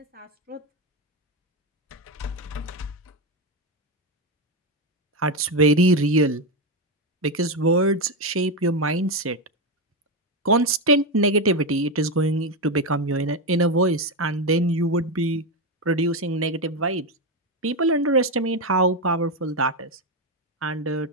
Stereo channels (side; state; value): both; normal; correlation 0.10